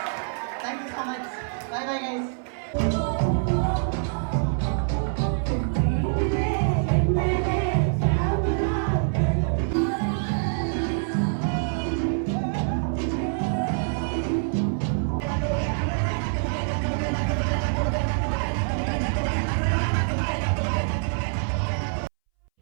Thank you so much. Bye bye guys.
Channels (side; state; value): left; silent; 61 dB below the other